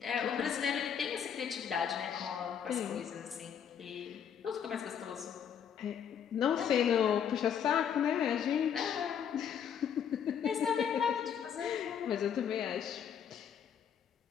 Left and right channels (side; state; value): right; quieter; 8.2 dB